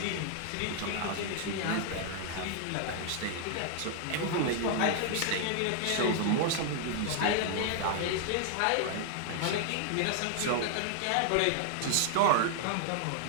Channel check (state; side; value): different; both; correlation 0.00